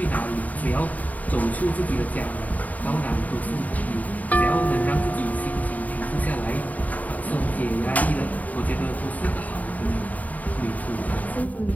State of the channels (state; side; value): late; right; 0.074 ms